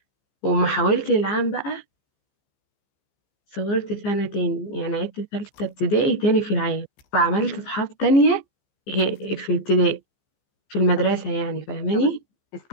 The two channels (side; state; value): right; late; 15 ms